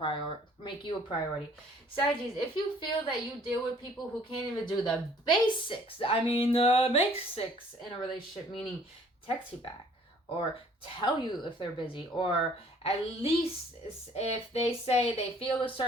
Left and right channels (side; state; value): both; normal; correlation 0.57